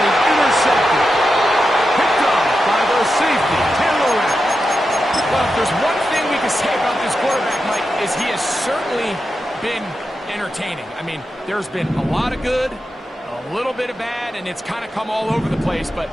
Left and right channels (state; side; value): normal; both; correlation 0.89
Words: was intercepted. Picked off by the safety, Taylor Rapp. Well, if there's one thing we can say about this quarterback, Mike, is he has certainly been entertaining. I mean, there's been a lot of good, a little bit of bad, and it's kind of come all over the place. But